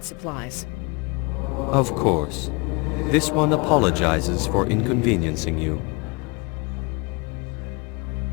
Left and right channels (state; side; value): quieter; right; 28.7 dB